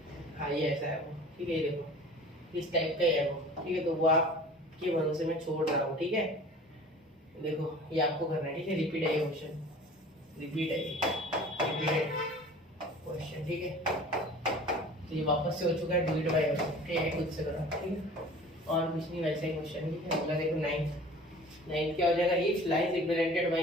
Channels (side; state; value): both; normal; correlation 0.43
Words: हाँ ये ऐसा है वो, ठीक है। ये देखो इस टाइप का ही है वो, ठीक है। तो वो आपके भरोसे में छोड़ रहा हूँ, ठीक है। देखो ये आपको करना है, ठीक है। रिपीट है ये क्वेश्चन, रिपीटेड क्वेश्चन, ठीक है। तो ये वापस से हो चुका है, डिलीट बाय, ठीक है, खुद से करो, ठीक है, और कुछ नहीं, वैसे ही क्वेश्चन, ठीक है। अगला देखो 9th क्या हो जाएगा, if lines represented by